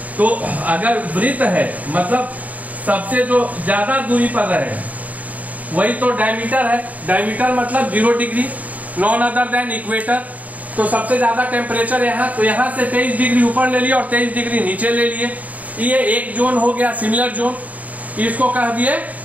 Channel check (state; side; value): late; left; 0.073 ms